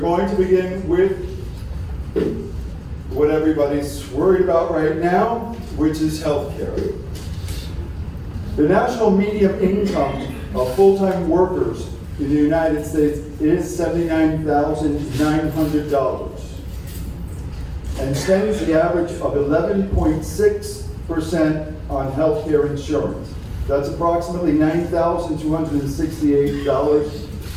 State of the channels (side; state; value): both; identical; correlation 1.00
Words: to begin with what everybody's worried about right now, which is healthcare. The national median income of full-time workers in the United States is $79,900 and spends the average of 11.6% on healthcare insurance. That's approximately $9,268